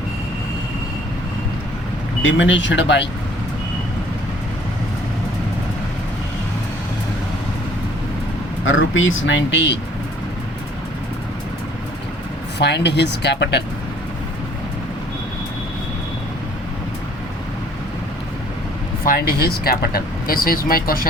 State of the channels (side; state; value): both; normal; correlation 0.56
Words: diminished by rupees 90. Find his capital. Find his capital. This is my